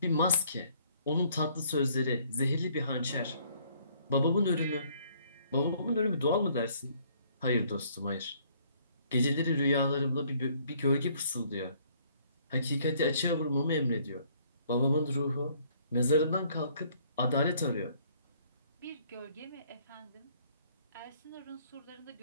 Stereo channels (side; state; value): both; inverted; correlation -0.63